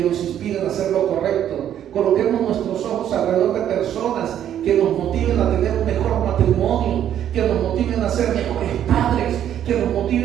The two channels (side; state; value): left; quieter; 10.5 dB